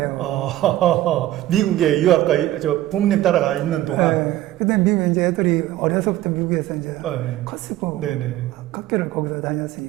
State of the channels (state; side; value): quieter; left; 14.6 dB